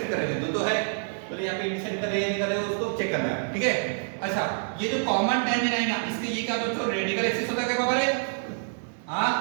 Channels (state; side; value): silent; left; digital silence